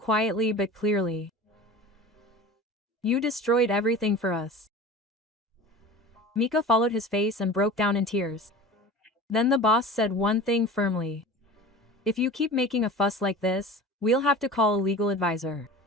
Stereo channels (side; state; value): both; normal; correlation 0.37